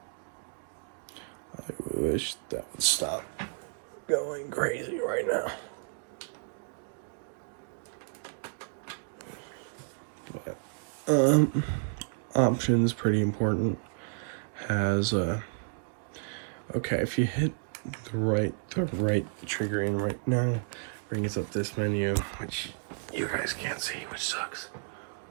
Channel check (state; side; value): silent; left; digital silence